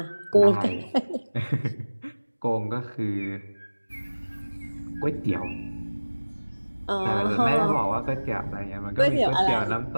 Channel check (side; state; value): both; inverted; correlation -1.00